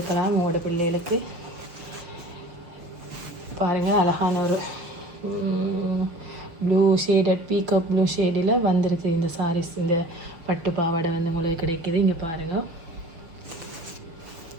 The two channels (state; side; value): late; left; 6.2 ms